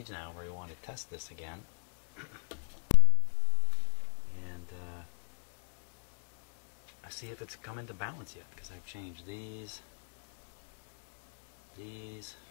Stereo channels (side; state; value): right; silent; 54 dB below the other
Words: now where we want to test this again. And I see if it's come into balance yet, because I've changed these. This